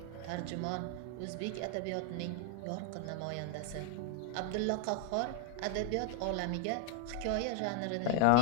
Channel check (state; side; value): different; both; correlation 0.00